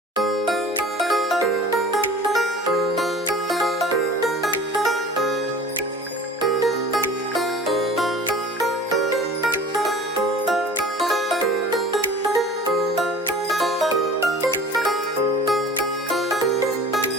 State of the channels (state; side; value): normal; both; correlation 0.42